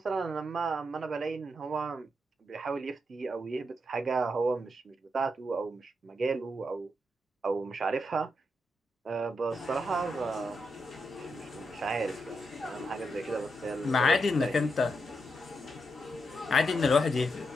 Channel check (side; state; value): both; normal; correlation 0.83